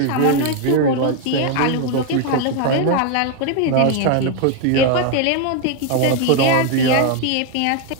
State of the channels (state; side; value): different; both; correlation 0.01